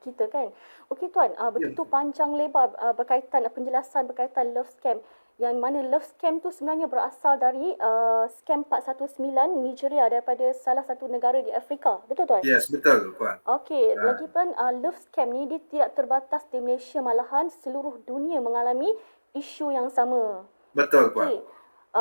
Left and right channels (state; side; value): inverted; both; correlation -1.00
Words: kita kan. Okey Tuan, begitu panjang lebar berkaitan penjelasan berkaitan love scam, yang mana love scam tu sebenarnya berasal dari scam 419 Nigeria, daripada salah satu negara di Afrika. Betul Tuan? Yes, betul Puan. Okey, lagipun love scam ni dia tidak terbatas di Malaysia, malahan seluruh dunia mengalami isu yang sama. Betul Puan. Okay.